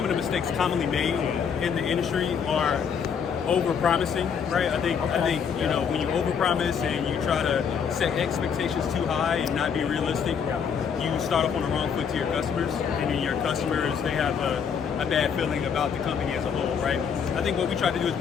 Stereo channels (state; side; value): quieter; right; 7.0 dB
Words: of the mistakes commonly made in the industry are over-promising, right? I think you know, when you over-promise and you try to set expectations too high and not be realistic, you start off on the wrong foot to your customers, and then your customers, they have a bad feeling about the company as a whole, right? I think what we try to do is